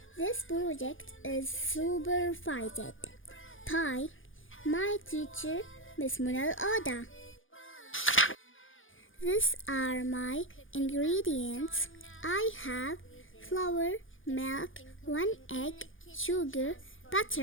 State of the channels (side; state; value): right; late; 0.58 ms